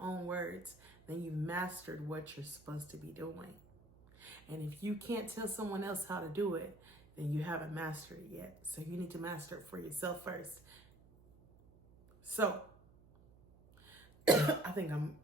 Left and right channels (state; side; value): noise; right; hum, 25 dB below the sound